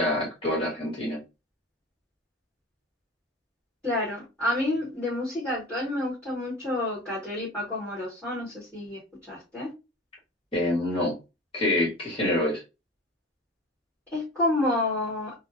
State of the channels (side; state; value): both; normal; correlation 0.35